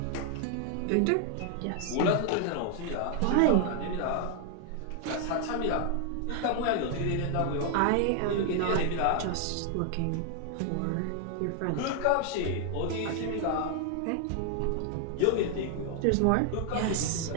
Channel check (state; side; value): different; both; correlation 0.00